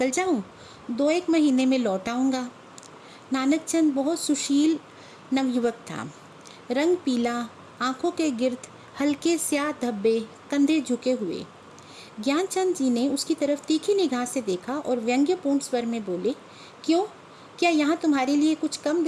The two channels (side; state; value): both; identical; correlation 1.00